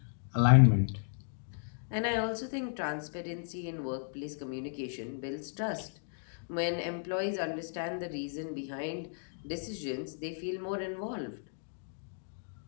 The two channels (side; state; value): right; silent; digital silence